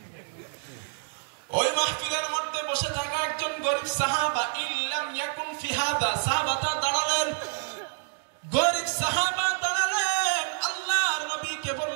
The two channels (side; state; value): left; silent; 59 dB below the other